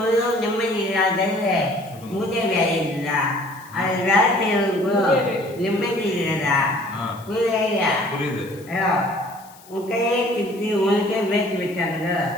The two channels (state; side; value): noise; left; hiss, 24 dB below the sound